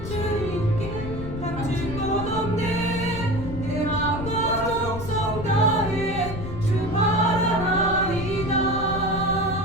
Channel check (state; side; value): noise; left; rumble, 8 dB below the sound